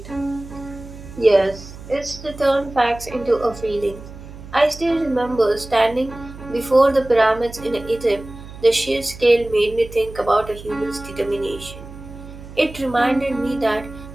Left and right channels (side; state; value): right; noise; hum, 15 dB below the sound